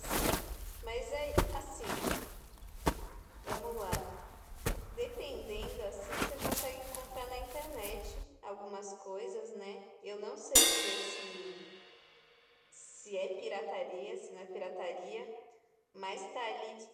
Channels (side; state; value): both; identical; correlation 1.00